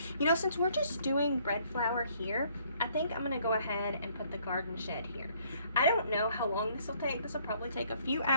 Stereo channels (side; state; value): both; inverted; correlation -0.64